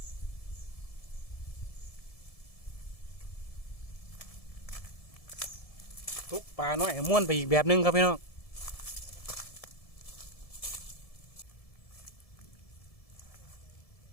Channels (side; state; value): right; late; 1.7 ms